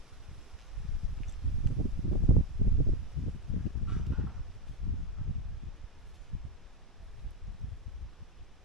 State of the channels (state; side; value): normal; both; correlation 0.11